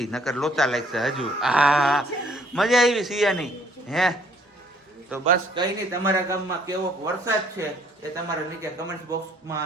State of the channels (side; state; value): both; normal; correlation 0.62